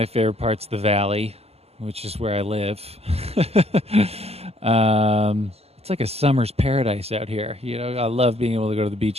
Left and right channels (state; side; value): late; left; 0.29 ms